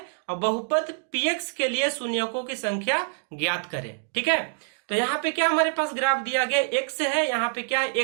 और बहुपद px के लिए शून्यकों की संख्या ज्ञात करें। ठीक है। तो यहाँ पे क्या हमारे पास ग्राफ दिया गया, x है, यहाँ पे क्या है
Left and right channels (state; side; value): silent; left; digital silence